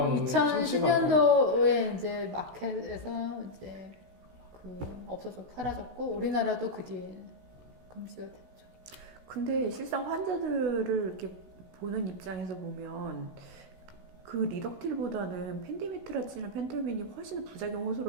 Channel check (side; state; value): left; late; 16 ms